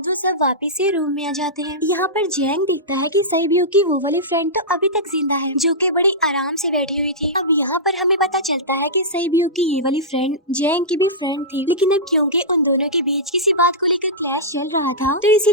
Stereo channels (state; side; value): normal; both; correlation -0.15